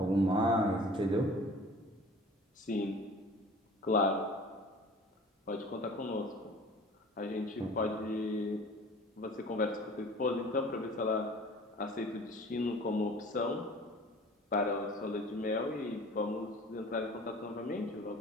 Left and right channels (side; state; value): both; normal; correlation 0.45